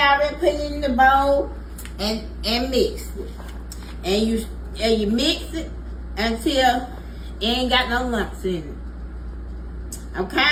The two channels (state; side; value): identical; both; correlation 1.00